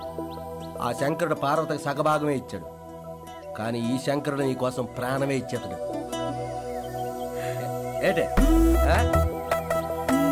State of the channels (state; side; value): identical; both; correlation 1.00